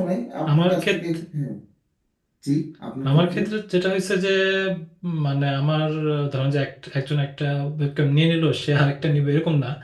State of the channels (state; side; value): identical; both; correlation 1.00